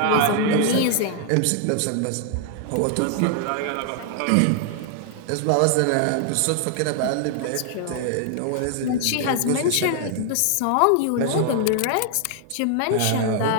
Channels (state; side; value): different; both; correlation 0.00